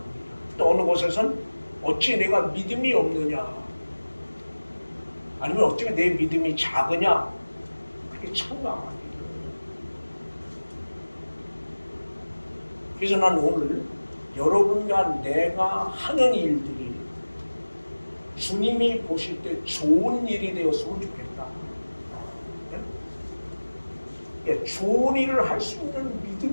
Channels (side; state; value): both; inverted; correlation -1.00